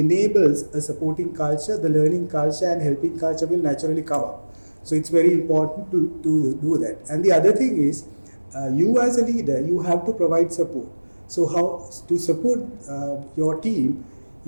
a supporting culture, the learning culture and helping culture will naturally come up. So it's very important to do that. And the other thing is, you as a leader, you have to provide support. So how to support your team,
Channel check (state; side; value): inverted; both; correlation -1.00